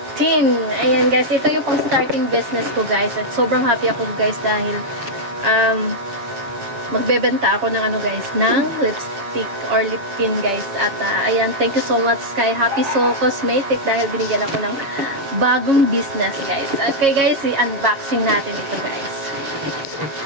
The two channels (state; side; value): late; left; 7.3 ms